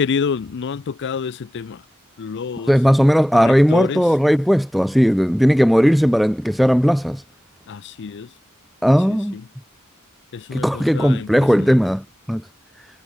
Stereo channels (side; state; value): both; normal; correlation 0.95